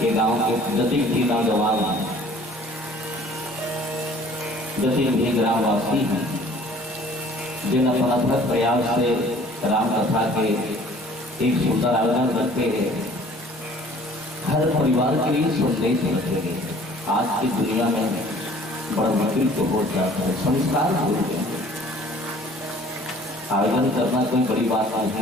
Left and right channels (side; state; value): both; normal; correlation 0.52